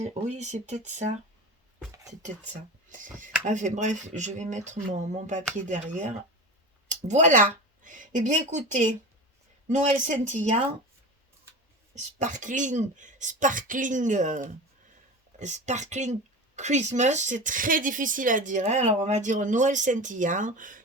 Oui, c'est peut-être ça. C'est peut-être ça. Enfin bref, je vais mettre mon papier derrière. Voilà. Eh bien écoutez, Noël scintillant, sparkling, sparkling, sparkling Christmas, c'est très difficile à dire, hein. Alors on va dire Noël scintillant,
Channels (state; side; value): normal; both; correlation 0.29